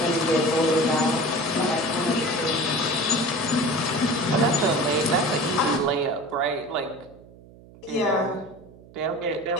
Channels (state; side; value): noise; right; hum, 22 dB below the sound